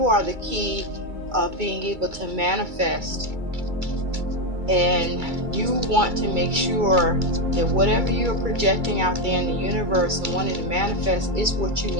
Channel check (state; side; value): late; left; 2.3 ms